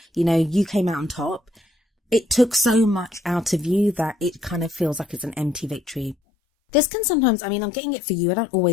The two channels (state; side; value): drops out; right; at 6.2 s